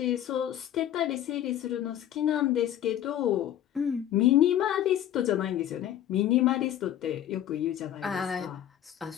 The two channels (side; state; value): right; quieter; 11.4 dB